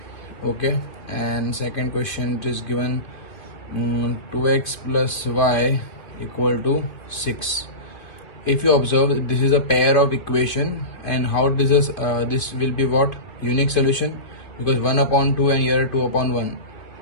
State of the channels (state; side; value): late; right; 2.5 ms